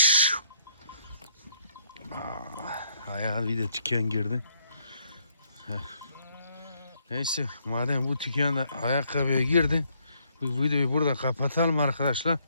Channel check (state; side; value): inverted; both; correlation -0.71